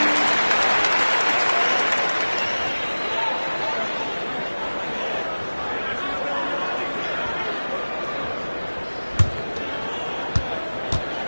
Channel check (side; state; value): both; inverted; correlation -1.00